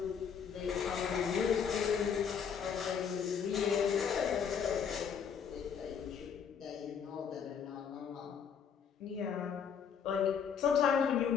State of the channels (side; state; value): right; quieter; 7.2 dB